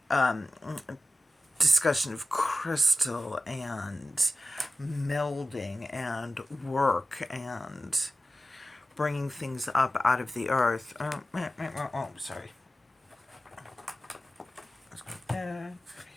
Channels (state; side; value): normal; both; correlation 0.94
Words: discussion of crystal and melding and work and bringing things up out of the earth. Sorry. Let's go there,